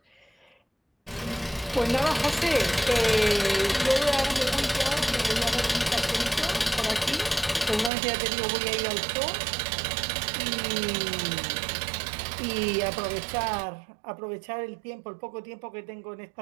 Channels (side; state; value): left; drops out; at 7.9 s